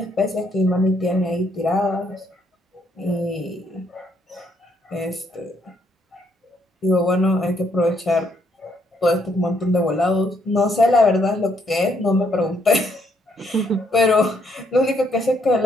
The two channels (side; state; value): both; normal; correlation 0.72